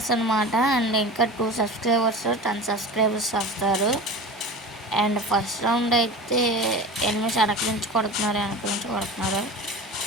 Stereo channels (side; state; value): both; normal; correlation 0.33